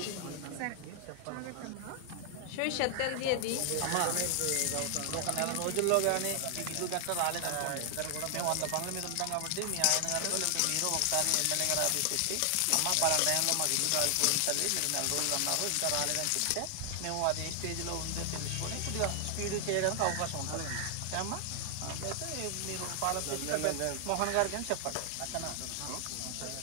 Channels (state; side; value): different; both; correlation 0.00